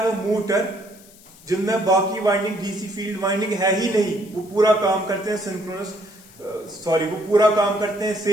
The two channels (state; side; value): noise; left; hiss, 24 dB below the sound